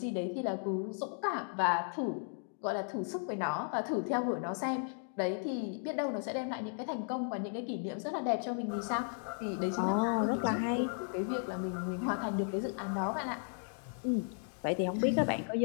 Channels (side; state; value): right; silent; 54 dB below the other